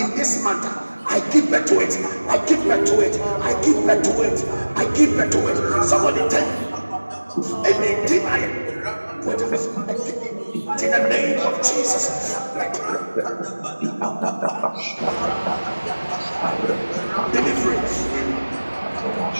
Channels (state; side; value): inverted; both; correlation -1.00